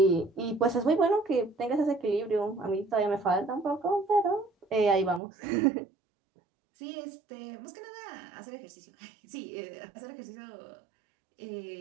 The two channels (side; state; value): left; drops out; at 5.2 s